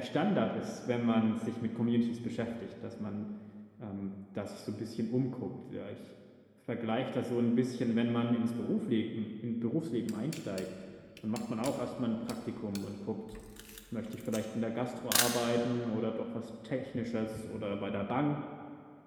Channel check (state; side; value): identical; both; correlation 1.00